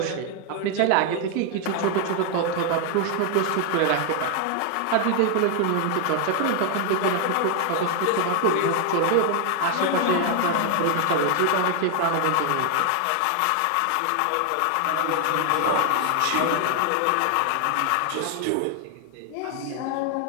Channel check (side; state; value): both; different; correlation 0.00